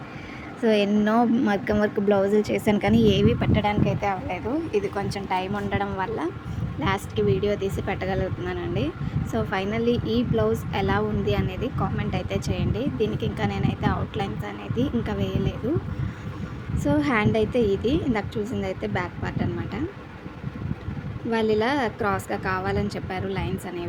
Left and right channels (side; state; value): both; identical; correlation 1.00